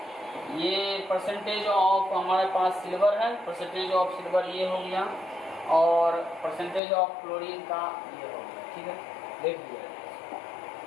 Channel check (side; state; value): right; drops out; at 6.8 s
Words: ये परसेंटेज ऑफ हमारे पास सिल्वर है, परसेंटेज ऑफ सिल्वर ये हो गया, और परसेंटेज ऑफ क्लोरीन का ये हो गया, ठीक है, देख लिया।